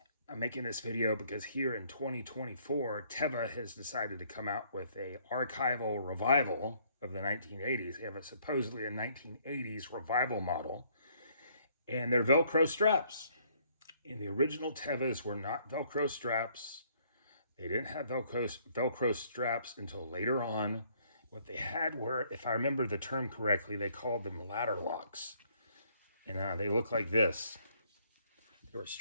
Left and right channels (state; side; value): inverted; both; correlation -0.65